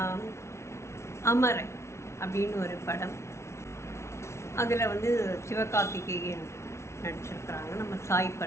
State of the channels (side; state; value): right; late; 0.13 ms